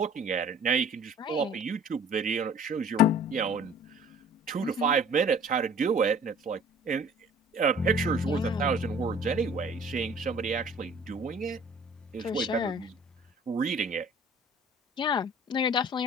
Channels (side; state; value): both; normal; correlation 0.50